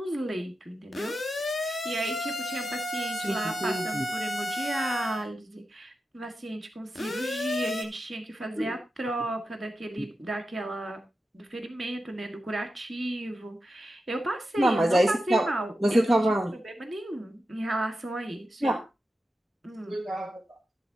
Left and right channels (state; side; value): normal; both; correlation 0.90